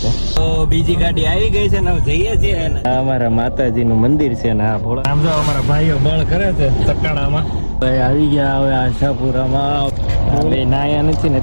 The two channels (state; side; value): inverted; both; correlation -1.00